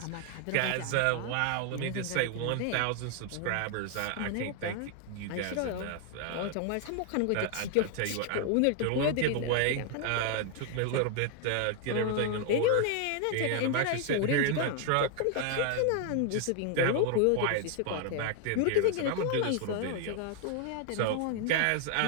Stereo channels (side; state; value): both; different; correlation 0.00